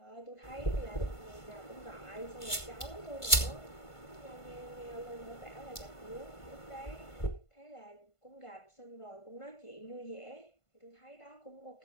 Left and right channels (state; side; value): late; right; 1.5 ms